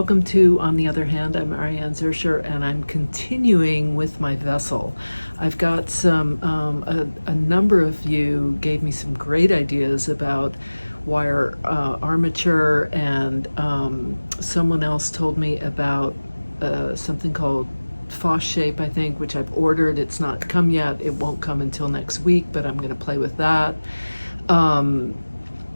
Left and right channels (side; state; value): both; inverted; correlation -1.00